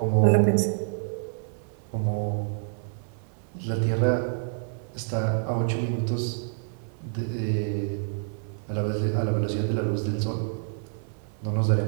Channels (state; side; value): silent; left; 55 dB below the other